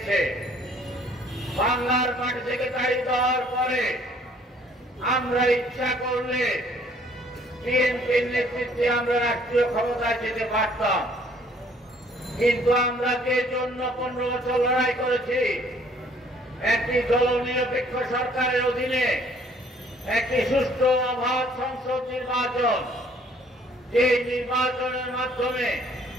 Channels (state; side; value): normal; both; correlation 0.60